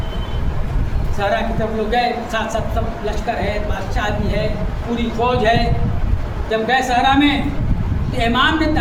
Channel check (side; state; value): both; identical; correlation 1.00